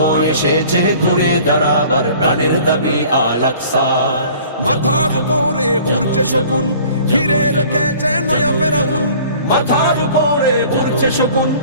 এসেছে ঘুরে দাঁড়াবার প্রাণের দাবি আল আকসা। মাথার উপরে উড়ছে শকুন, ঘিরে রেখেছে নয়া ফেরাউন। মাথার উপরে উড়ছে শকুন,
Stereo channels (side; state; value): both; inverted; correlation -0.49